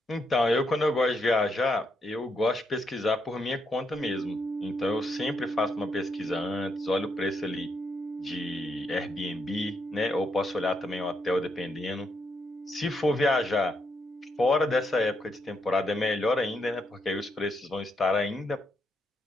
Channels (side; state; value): both; normal; correlation 0.79